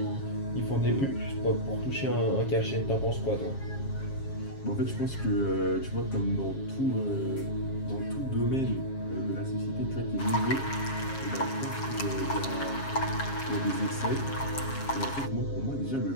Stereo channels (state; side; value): late; right; 7.4 ms